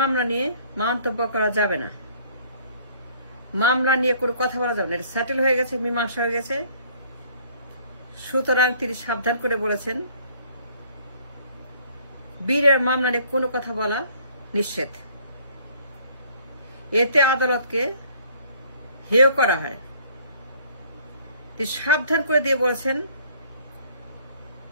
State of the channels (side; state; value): both; inverted; correlation -0.58